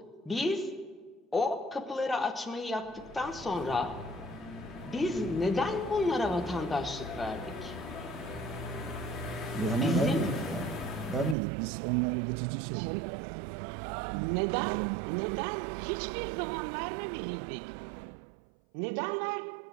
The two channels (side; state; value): left; drops out; at 11.4 s